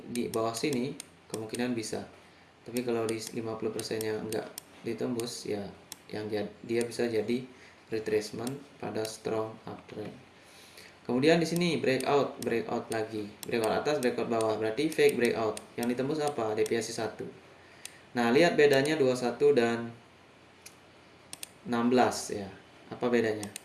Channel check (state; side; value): identical; both; correlation 1.00